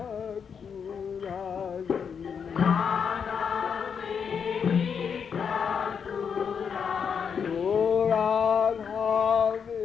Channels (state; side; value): quieter; right; 6.8 dB